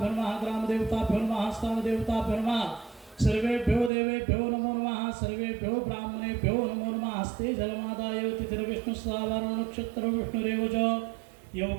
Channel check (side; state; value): left; drops out; at 3.9 s